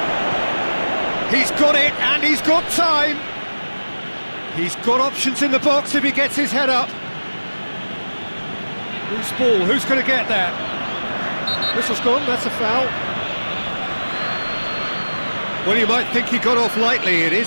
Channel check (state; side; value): inverted; both; correlation -1.00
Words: He's got it, and he's got time. He's got options in the box if he gets his head up. Loose ball, who's going to get that? Whistle's gone, that's a foul. Well, you might think he got off lightly, it